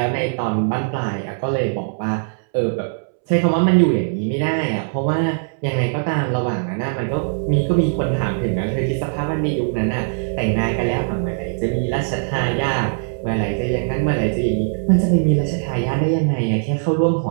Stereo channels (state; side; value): silent; left; 65 dB below the other